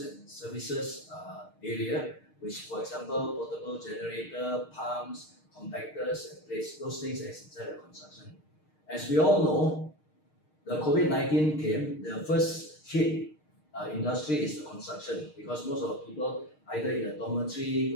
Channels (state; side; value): late; right; 6.5 ms